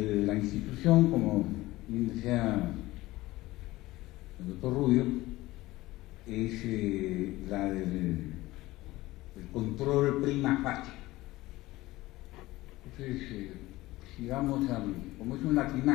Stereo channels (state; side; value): quieter; right; 18.4 dB